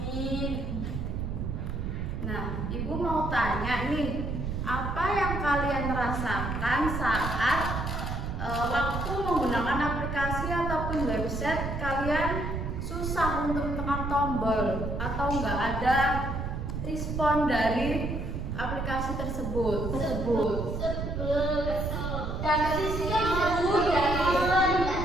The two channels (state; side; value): noise; right; rumble, 3 dB below the sound